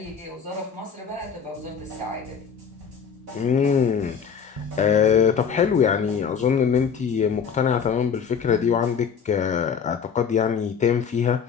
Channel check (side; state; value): right; quieter; 6.8 dB